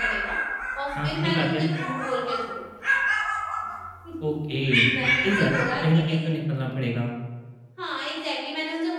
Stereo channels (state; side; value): identical; both; correlation 1.00